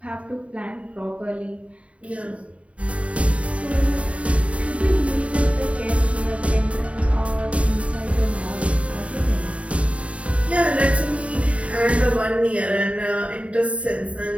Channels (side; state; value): left; late; 0.064 ms